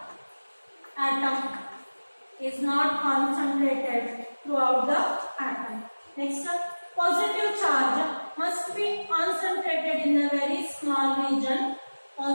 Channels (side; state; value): both; inverted; correlation -1.00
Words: atom, is not concentrated throughout the atom. Next, positive charge must be concentrated in a very small region.